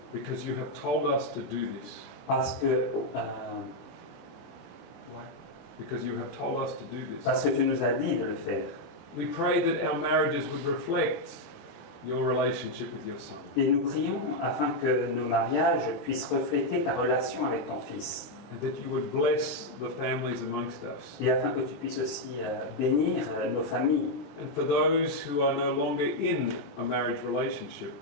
because you have told us to do this. parce que, Because you have told us to do this. parce que tu nous as dit de le faire. We pray that our marriages would reflect your relationship with your Son. Et nous prions afin que nos mariages puissent refléter ta relation avec ton Fils. And that you would bless the families amongst us. Et afin que tu puisses aussi bénir nos familles. And for those who are no longer in a marriage relationship,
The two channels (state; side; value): late; right; 21 ms